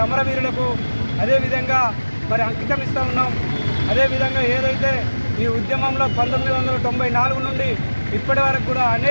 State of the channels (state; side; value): inverted; both; correlation -1.00